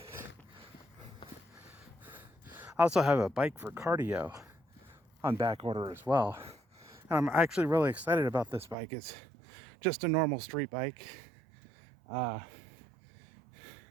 I also have a bike for cardio on back order as well. And I'm actually really excited about this bike. It's just a normal street bike. Has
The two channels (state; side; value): drops out; left; at 8.8 s